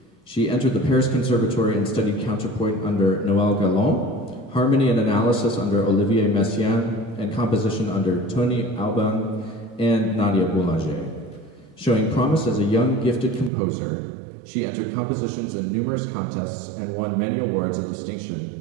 She entered the Paris Conservatory and studied counterpoint under Noël Galland, harmony and analysis under Olivier Messiaen, and composition under Tony Alban and Nadia Boulanger. Showing promise as a young, gifted composer, she entered compositions in numerous contests and won many awards of distinction,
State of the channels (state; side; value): drops out; left; at 13.5 s